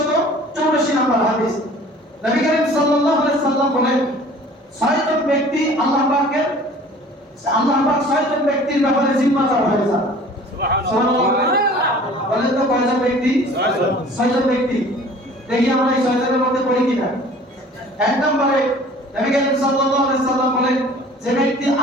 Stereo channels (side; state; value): both; normal; correlation 0.48